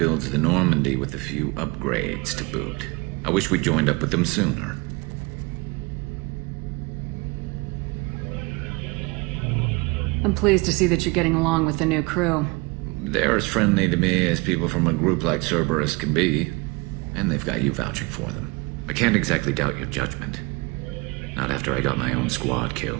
the Normandy with a few upgrades to boot. I wish we'd joined up with them sooner. I'm pleased to see that you're getting along with the new crew. They're as friendly to me as people from a group like Cerberus can be. And they've got you vouching for them. I can't exactly doubt your judgment. Not after I got my own squad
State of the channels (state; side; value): quieter; left; 26.2 dB